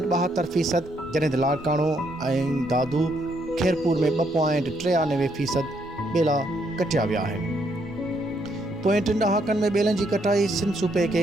जॾहिं त लाड़काणो ऐं दादू खैरपुर में 2.93% ॿेला कटिया विया आहिनि। पोएं 3 ॾहाकनि में ॿेलनि जी कटाई सिंध सूबे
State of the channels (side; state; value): both; normal; correlation 0.73